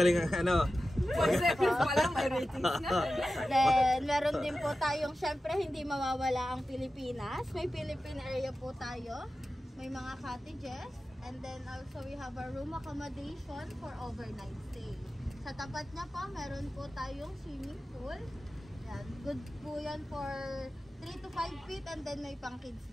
ang 4 seconds pa lang, may ratings na. Then, meron din po tayong, syempre, hindi mawawala ang Pilipinas. May Philippine area po tayo. May mga cottages. And then, also, we have a room accommodation for overnight stay. Sa tapat niya po, meron po tayong swimming pool. Yan. Good po yan for 3 to 5 feet and then may pang kids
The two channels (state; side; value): normal; both; correlation 0.94